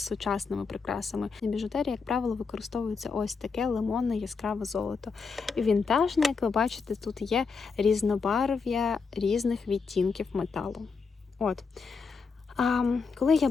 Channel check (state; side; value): quieter; right; 5.0 dB